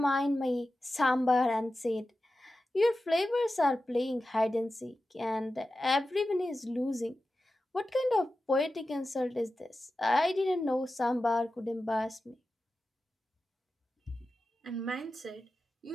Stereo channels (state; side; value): normal; both; correlation 0.93